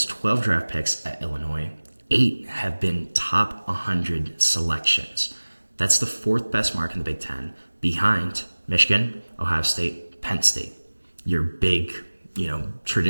12 draft picks at Illinois, 8 have been top 100 selections. That's the 4th best mark in the Big Ten, behind Michigan, Ohio State, Penn State. Your big,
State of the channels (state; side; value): inverted; both; correlation -1.00